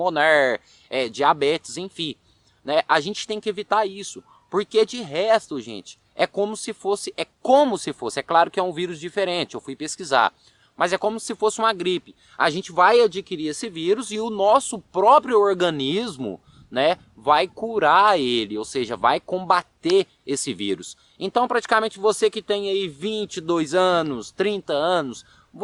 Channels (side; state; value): both; identical; correlation 1.00